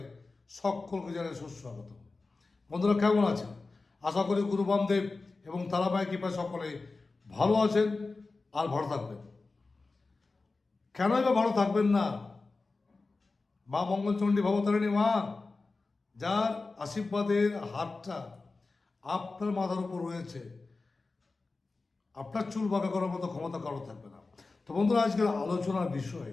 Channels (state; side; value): quieter; right; 3.7 dB